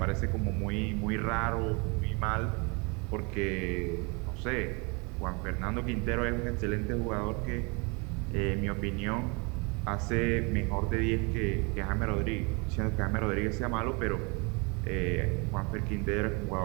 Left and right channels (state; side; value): quieter; left; 30.5 dB